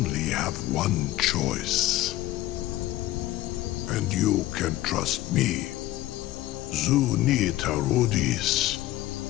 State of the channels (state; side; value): quieter; right; 15.8 dB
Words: have one choice. And you can trust me. Zuni Tarudis.